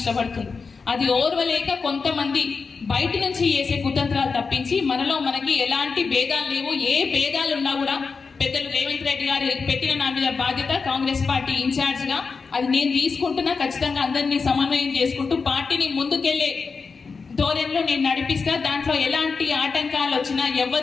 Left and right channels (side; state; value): right; quieter; 4.9 dB